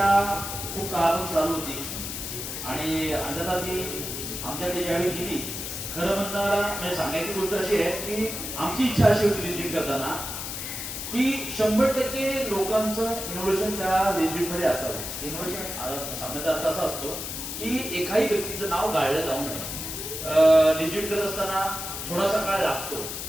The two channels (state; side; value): noise; left; hiss, 6 dB below the sound